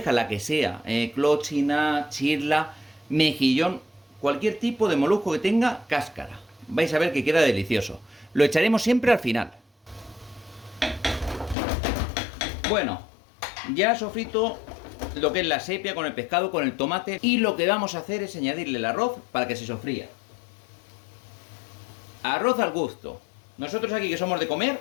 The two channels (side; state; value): right; drops out; at 11.6 s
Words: la que sea, clochina, chirla, mejillón, cualquier tipo de molusco que tenga cáscara. Vais a ver que queda delicioso. Lo echaremos siempre al final. Bueno, ya sofrito lo que es la sepia con el pescado, con el tomate. Y lo que vamos a hacer es añadirle el arroz para que se sofría. Arroz al gusto. Nosotros aquí que somos de comer,